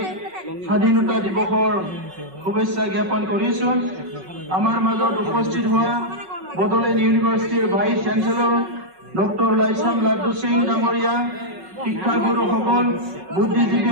স্বাধীনতা দিৱসৰ শুভেচ্ছা জ্ঞাপন কৰিছো আমাৰ মাজত উপস্থিত হোৱা বড়োলেণ্ড ইউনিভাৰ্চিটিৰ ভাইচ চেঞ্চেলৰ ডক্টৰ লাইছাম লাড্ডু সিং ডাঙৰীয়া শিক্ষাগুৰুসকল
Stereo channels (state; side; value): late; left; 5.4 ms